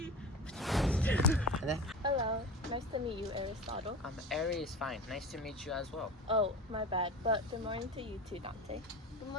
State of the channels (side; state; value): both; normal; correlation 0.31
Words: Hello, nice to meet you, Aristotle. Ari is fine. Nice to meet you as well. Oh, my bad, but good morning to you too, Dante. Good